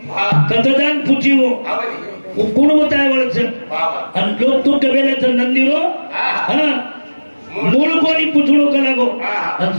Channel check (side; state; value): both; inverted; correlation -1.00